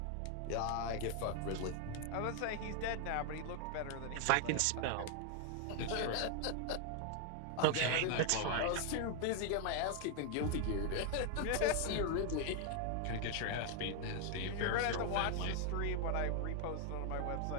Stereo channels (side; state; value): both; different; correlation 0.00